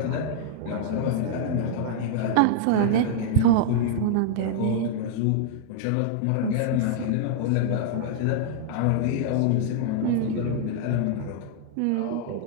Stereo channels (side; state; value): both; different; correlation -0.01